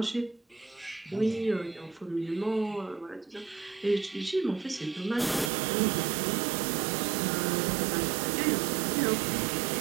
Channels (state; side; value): drops out; left; at 5.5 s